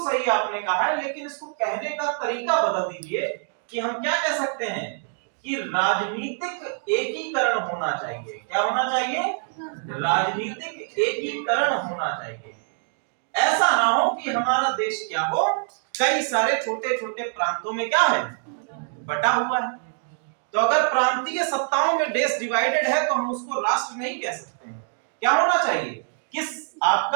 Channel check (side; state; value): left; silent; 58 dB below the other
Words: सही आपने कहा है, लेकिन इसको कहने का तरीका बदल दीजिए कि हम क्या कह सकते हैं कि राजनीतिक एकीकरण होना चाहिए। क्या होना चाहिए? राजनीतिक एकीकरण होना चाहिए। ऐसा ना हो कि हमारा देश क्या हो, कई सारे छोटे छोटे प्रांतों में क्या है, बटा हुआ है। तो अगर प्रांतीय सत्ताओं में देश डिवाइडेड है तो हम उसको राष्ट्र नहीं कह सकते हैं। क्या होना चाहिए? किस